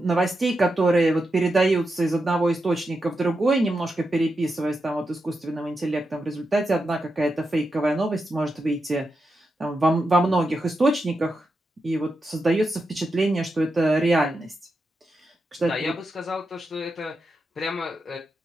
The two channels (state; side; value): normal; both; correlation 0.87